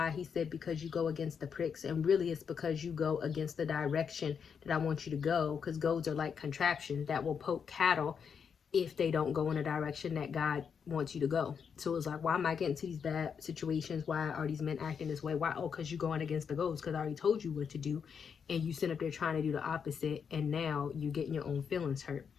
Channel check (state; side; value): quieter; right; 6.8 dB